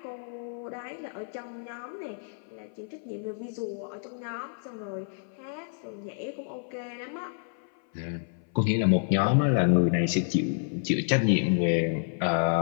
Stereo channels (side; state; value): right; silent; 58 dB below the other